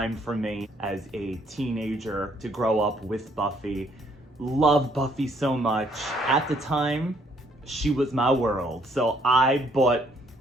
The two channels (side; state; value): both; normal; correlation 0.67